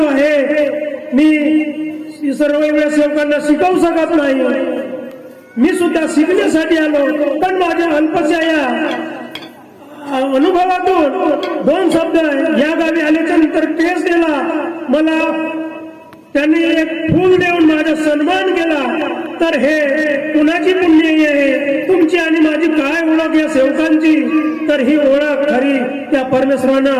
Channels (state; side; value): identical; both; correlation 1.00